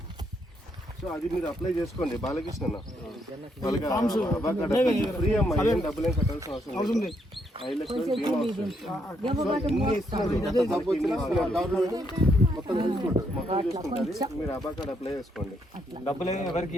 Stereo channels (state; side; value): normal; both; correlation 0.75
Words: సో అది మీరు అప్లై చేసుకోండి. బాలకృష్ణ వాళ్ళకి ఫ్రీ అమ్మా, ఏం డబ్బులు ఏం కట్టాల్సిన అవసరం లేదు. 5 లక్షల బీమా వస్తుంది. మొత్తం చూసుకుంటుంది. మీరు అబా కార్డు అప్లై చేసుకోండి.